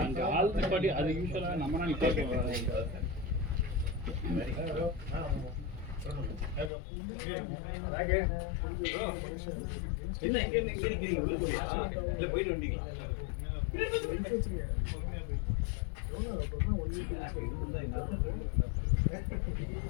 அங்க ஆள் நிப்பாட்டி அது யூஸ்வலா நம்ம நிப்பாட்டி என்ன இங்க நிக்கிறீங்க உள்ளுக்குள்ளயா? இல்ல போயிட்டு வந்தீங்களா?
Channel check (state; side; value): drops out; right; at 6.7 s